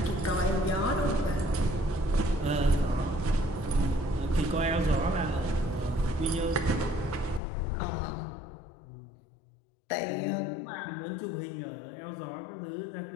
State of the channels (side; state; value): right; drops out; at 7.4 s